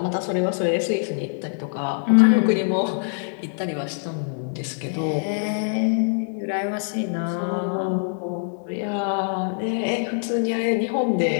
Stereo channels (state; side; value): silent; right; digital silence